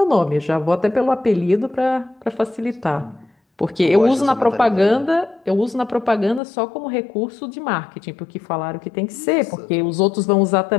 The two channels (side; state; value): right; drops out; at 6.4 s